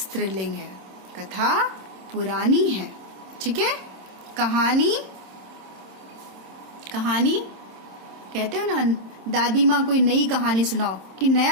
है, कथा पुरानी है। ठीक है। कहानी, कहानी कहते हो ना, दादी माँ कोई नई कहानी सुनाओ कि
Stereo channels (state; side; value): late; left; 26 ms